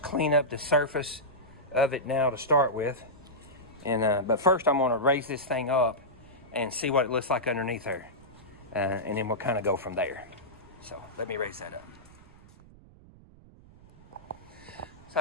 clean up the surface of it now to start with. And but first I'm going to raise this thing up and see what it looks like underneath there. And then we'll kind of go from there. So let me raise that up. So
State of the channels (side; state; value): right; noise; rumble, 23 dB below the sound